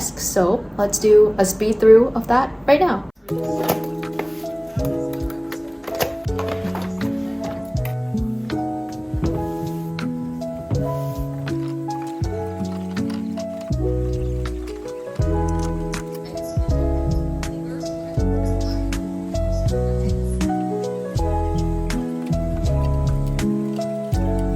So let's do a speed through of that right now.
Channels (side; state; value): both; identical; correlation 1.00